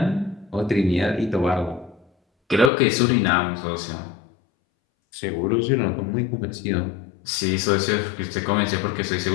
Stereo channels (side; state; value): right; drops out; at 2.7 s